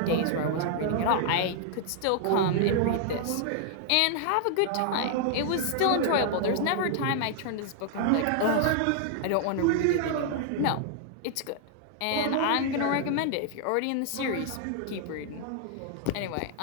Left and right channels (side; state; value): both; different; correlation -0.01